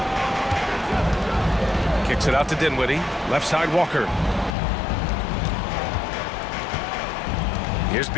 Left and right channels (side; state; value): right; drops out; at 4.5 s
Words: Kicks it out to Dinwiddie. Left side, Walker. Here's